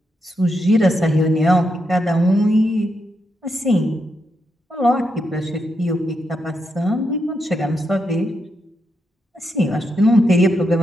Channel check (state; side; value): normal; both; correlation 0.83